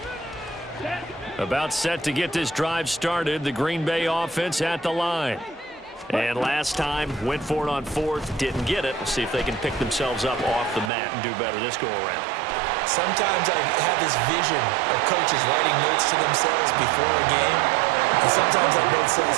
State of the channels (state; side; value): drops out; left; at 10.9 s